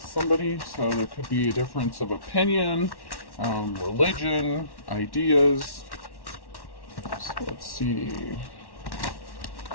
somebody. So there could be a difference of opinion, religion, ideas. So let's see.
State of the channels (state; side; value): late; right; 1.1 ms